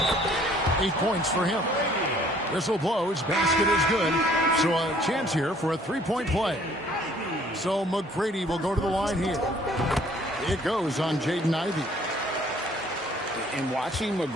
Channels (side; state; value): both; normal; correlation 0.58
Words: 8 points for him. Whistle blows. Basket is good. So a chance here for a 3-point play. So McGrady will go to the line here. It goes on Jaden Ivey. In watching